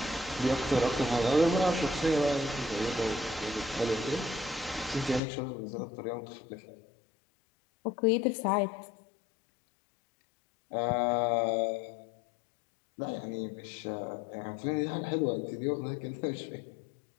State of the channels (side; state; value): right; drops out; at 5.2 s